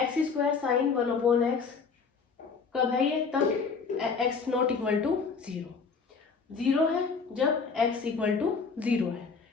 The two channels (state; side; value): quieter; right; 5.2 dB